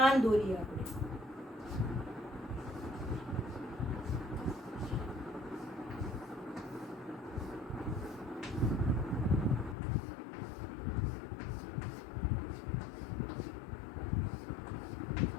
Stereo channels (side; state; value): right; drops out; at 9.8 s